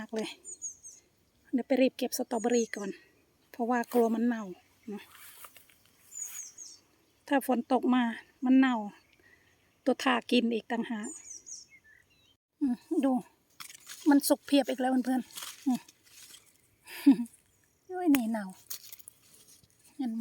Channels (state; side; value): identical; both; correlation 1.00